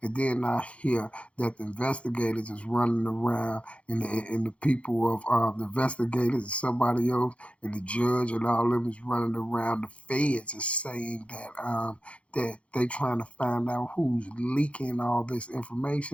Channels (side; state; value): right; late; 0.062 ms